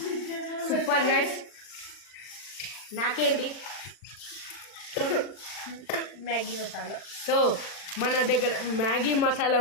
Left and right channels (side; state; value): right; late; 40 ms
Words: super guys. నాకేంటి మ్యాగీ మసాలా. సో మన దగ్గర మ్యాగీ మసాలా